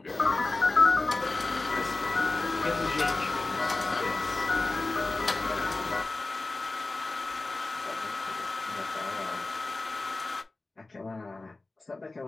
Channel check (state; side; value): quieter; right; 3.2 dB